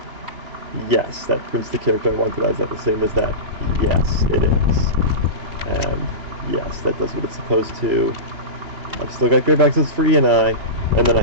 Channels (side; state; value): left; late; 3.0 ms